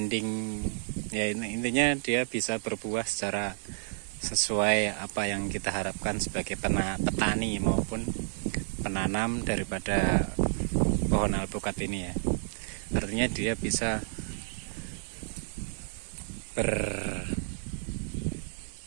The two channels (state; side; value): silent; left; digital silence